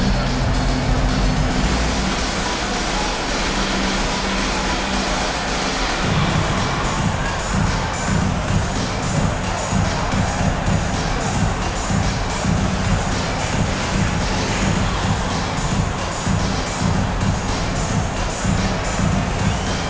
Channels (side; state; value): both; identical; correlation 1.00